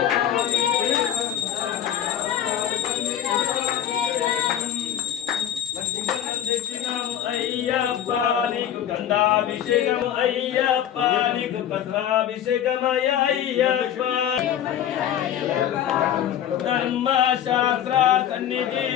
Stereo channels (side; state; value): right; quieter; 10.4 dB